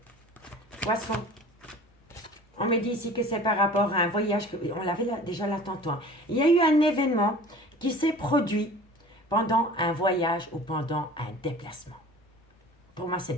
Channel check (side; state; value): both; normal; correlation 0.43